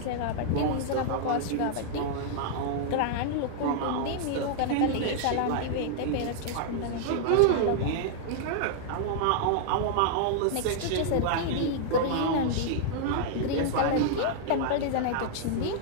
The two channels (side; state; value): both; different; correlation -0.01